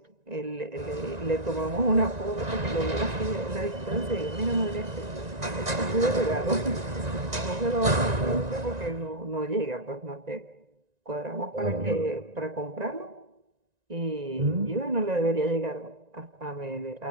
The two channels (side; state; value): left; late; 1.9 ms